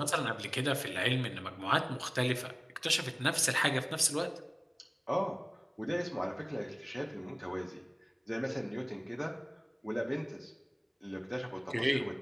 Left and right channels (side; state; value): both; identical; correlation 1.00